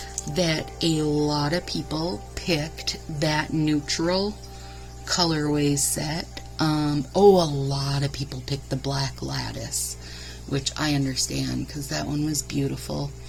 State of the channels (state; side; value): identical; both; correlation 1.00